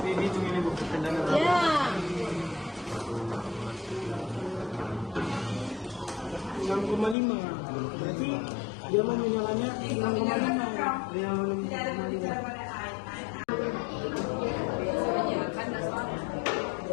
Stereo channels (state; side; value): drops out; right; at 7.2 s